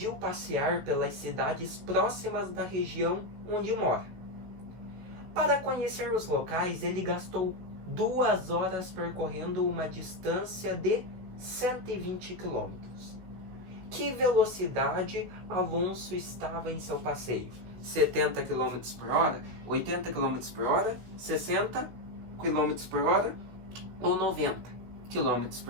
passear pelas cidades próximas da região onde mora. Para conhecer os locais, ele gastou 2 horas percorrendo uma distância de 120 km. Que velocidade Alonso estava em seu passeio? 70 km por hora? 80 km por hora? 60 km por hora? Ou 90 km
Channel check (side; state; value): left; late; 16 ms